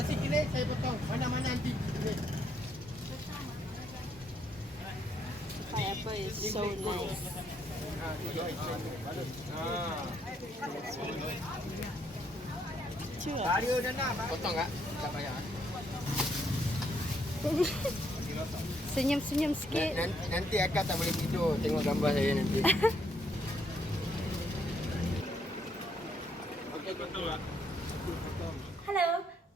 kini saya potong. Mana-mana nanti kini. Pineapple is so nice. Chưa. Bario dah nak. Potong tak? Tak payah. Senyum-senyum sikit. Nanti akak tak boleh tidur tengok gambar saya nanti. Hello,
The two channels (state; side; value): normal; both; correlation 0.72